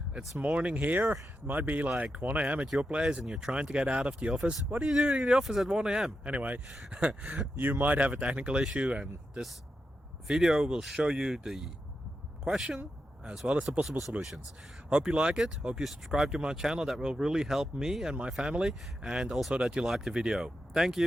it's morning here. It might be like 1 a.m. at your place and you're trying to get out of the office. What are you doing in the office at 1 a.m.? Anyway, you might have a technical issue and this video will show you the question as well as the possible solutions. Hope you like it, hope you subscribe to my channel. That will really help me and my family, and also that you like the video. Thank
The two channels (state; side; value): normal; both; correlation 0.88